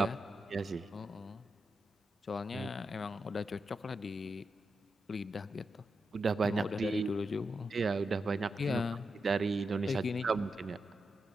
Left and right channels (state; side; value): normal; both; correlation 0.86